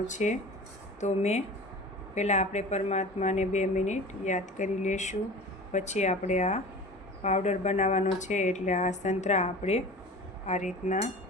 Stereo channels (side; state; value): both; normal; correlation 0.38